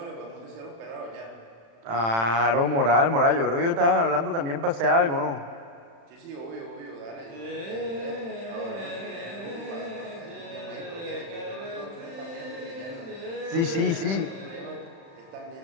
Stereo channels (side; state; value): left; late; 35 ms